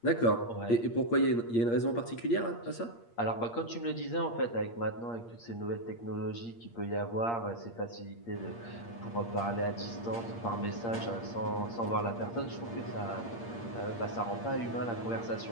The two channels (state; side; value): late; right; 8.6 ms